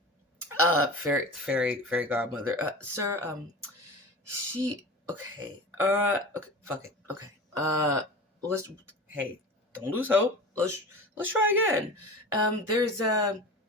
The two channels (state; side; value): normal; both; correlation 0.33